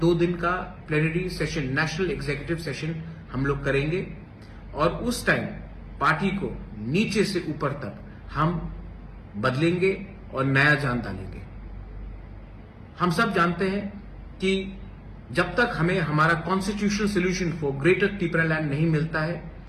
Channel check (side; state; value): both; identical; correlation 1.00